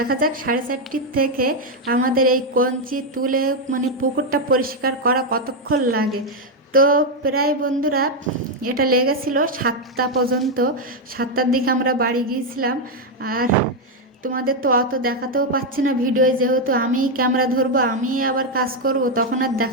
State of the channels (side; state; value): both; normal; correlation 0.03